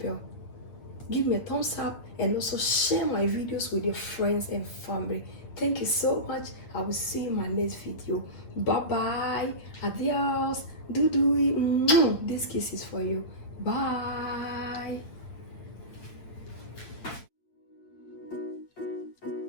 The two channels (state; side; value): late; right; 8.7 ms